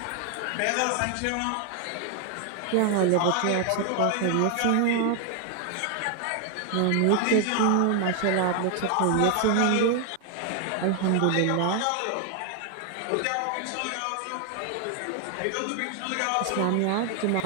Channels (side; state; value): both; different; correlation 0.00